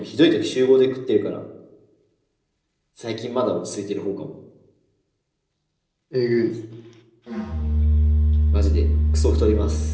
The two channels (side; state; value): both; identical; correlation 1.00